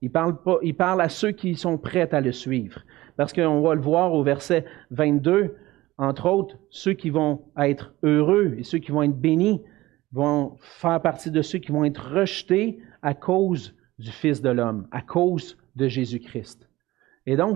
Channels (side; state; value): left; quieter; 18.0 dB